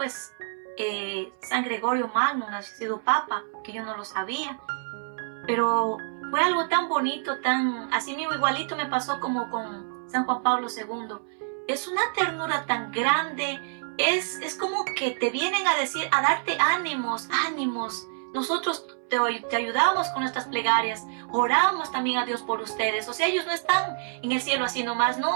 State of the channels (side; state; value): left; silent; 59 dB below the other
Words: San Gregorio Magno, había sido Papa, que yo no lo sabía. Pero fue algo tan bonito, así mismo igualito me pasó como con San Juan Pablo II. Es una ternura tan grande, es como que te vienen a decir, a darte ánimos, ánimos. Nosotros te ayudamos con nuestras plegarias, oramos también a Dios por ustedes. O sea, ellos no están en el cielo así nomás,